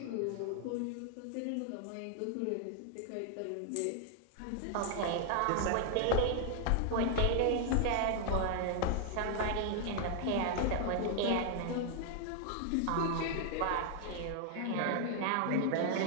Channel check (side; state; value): both; different; correlation 0.00